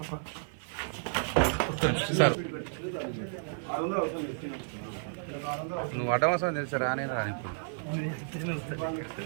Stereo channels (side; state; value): left; silent; digital silence